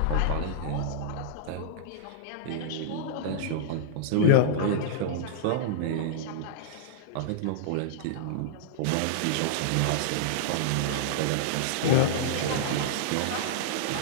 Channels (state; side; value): different; both; correlation -0.02